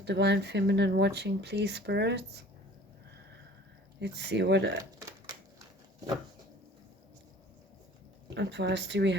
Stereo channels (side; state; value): both; normal; correlation 0.48